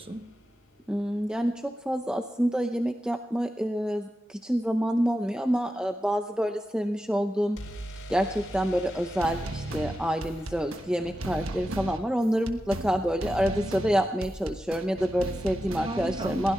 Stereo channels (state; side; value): normal; both; correlation 0.90